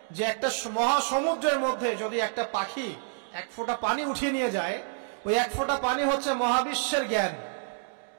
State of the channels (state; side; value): silent; left; digital silence